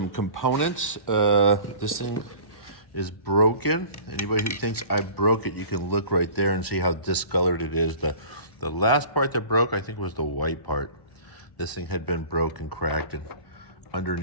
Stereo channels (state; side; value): late; right; 1.1 ms